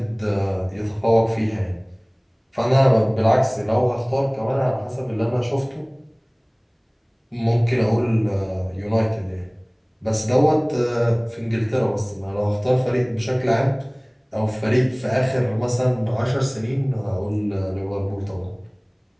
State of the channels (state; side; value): identical; both; correlation 1.00